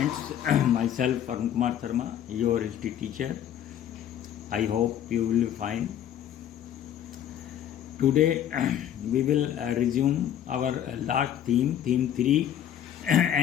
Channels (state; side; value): quieter; right; 10.3 dB